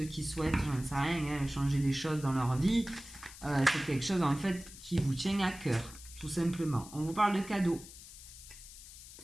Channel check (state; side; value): noise; left; hiss, 16 dB below the sound